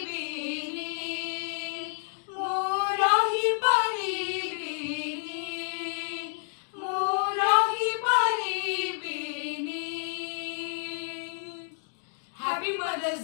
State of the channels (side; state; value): right; silent; digital silence